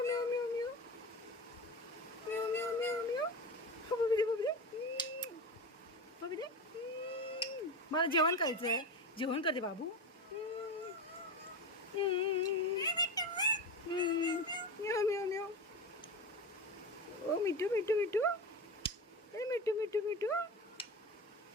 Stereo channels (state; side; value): normal; both; correlation 0.24